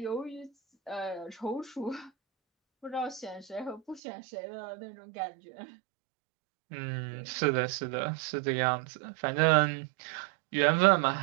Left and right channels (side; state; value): left; drops out; at 4.0 s